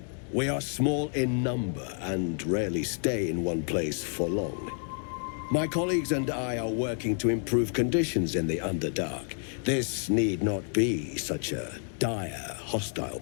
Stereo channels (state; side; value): silent; right; 58 dB below the other